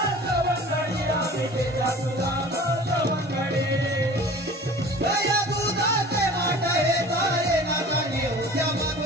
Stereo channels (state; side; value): normal; both; correlation 0.43